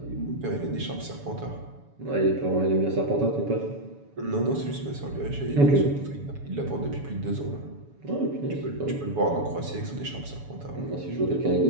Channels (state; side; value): late; left; 7.1 ms